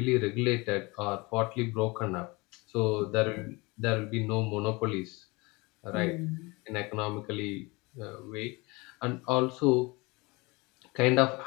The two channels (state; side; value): quieter; right; 25.2 dB